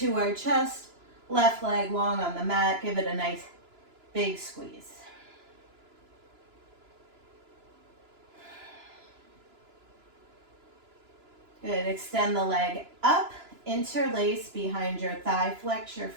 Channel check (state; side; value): late; left; 2.9 ms